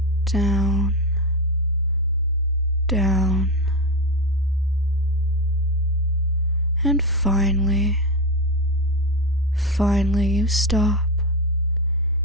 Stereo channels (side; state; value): both; normal; correlation 0.15